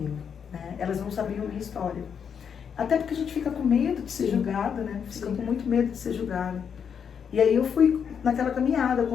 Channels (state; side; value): quieter; right; 7.3 dB